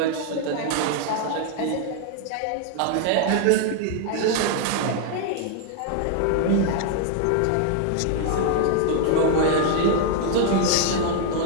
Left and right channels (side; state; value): both; different; correlation 0.00